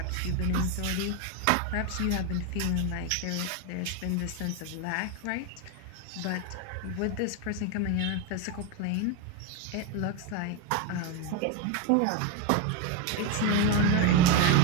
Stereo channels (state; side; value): different; both; correlation 0.03